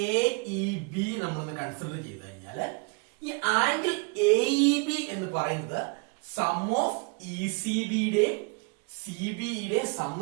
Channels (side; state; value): left; quieter; 33.6 dB